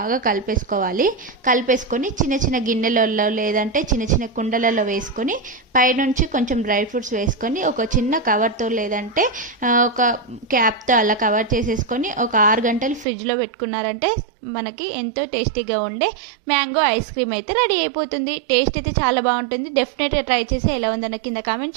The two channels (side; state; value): left; drops out; at 13.1 s